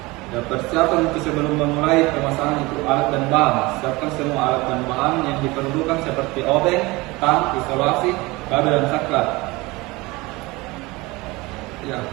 Dan persiapan untuk sebelum memulai pemasangan itu alat dan bahan. Siapkan semua alat dan bahan yang diperlukan seperti obeng, tang, isolasi, kabel, dan saklar. Ya,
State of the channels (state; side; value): quieter; left; 22.6 dB